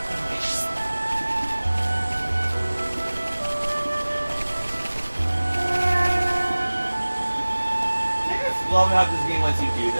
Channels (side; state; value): both; inverted; correlation -1.00